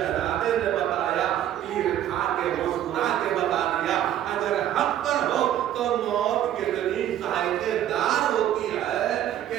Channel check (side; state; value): left; quieter; 11.5 dB